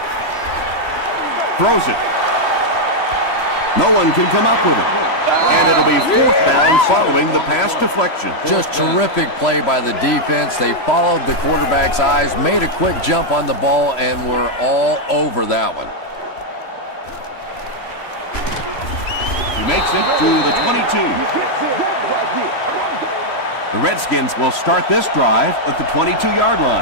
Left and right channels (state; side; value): late; right; 3.0 ms